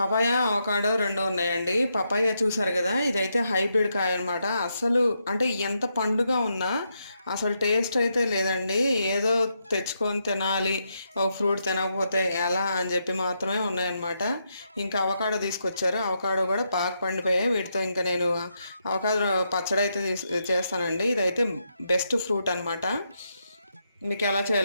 అవకాడో 2 ఉన్నాయండి. పపాయ చూసారు కదా, ఇదైతే హైబ్రిడ్ కాయ అనమాట. అసలు అంటే ఎంత పండుగ ఉన్నా అసలు టేస్ట్ అయితే లేదండి. ఏదో తెచ్చుకొని తినాలి, ఒక ఫ్రూట్ తినకపోతే ఎలా అని చెప్పి మాత్రమే ఉన్నాయన్నమాట. ఇంకా అవకాడో తీసుకొచ్చారు, అవకాడో కూడా బాగా పండిపోయాయి. వీటితో ఇంకా నేను అవకాడో పచ్చడి అయితే చేస్తానండి. ఇదైతే బెస్ట్ ఫ్రూట్ అనమాట. మీకు ఎలా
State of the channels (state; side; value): inverted; both; correlation -0.81